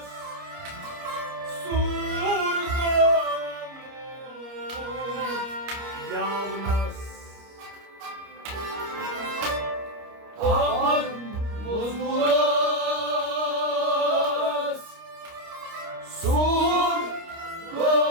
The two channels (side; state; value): left; late; 29 ms